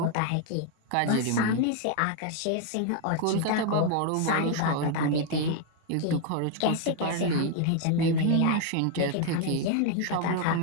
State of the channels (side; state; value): both; different; correlation 0.00